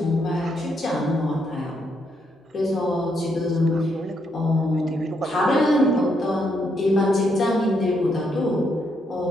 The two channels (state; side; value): normal; both; correlation 0.77